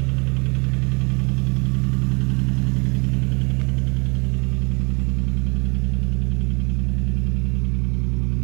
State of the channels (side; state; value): left; quieter; 31.3 dB